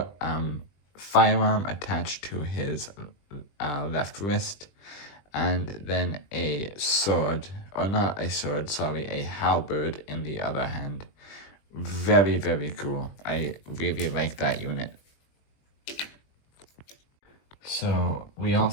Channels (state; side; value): late; right; 20 ms